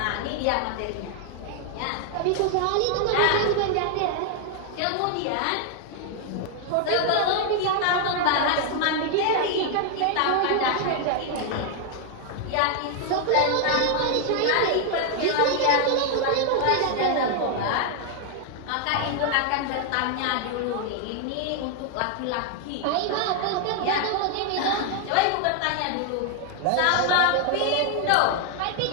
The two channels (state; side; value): different; both; correlation 0.00